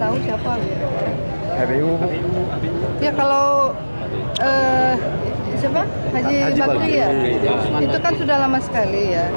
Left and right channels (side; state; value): both; inverted; correlation -1.00